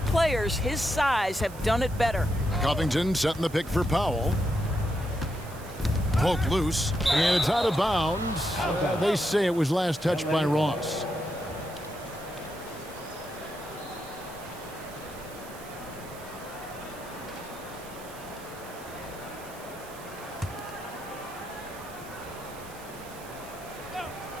players his size have done it better. Covington setting the pick for Powell. Poked loose, and it's out of bounds. They say it was last touched by Ross.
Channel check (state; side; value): noise; right; hiss, 18 dB below the sound